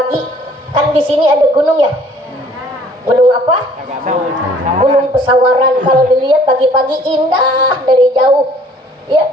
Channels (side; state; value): both; normal; correlation 0.56